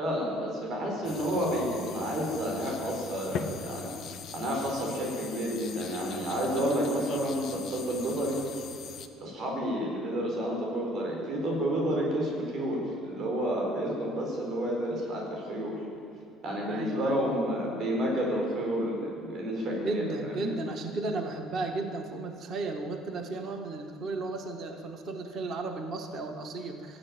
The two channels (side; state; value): both; normal; correlation 0.58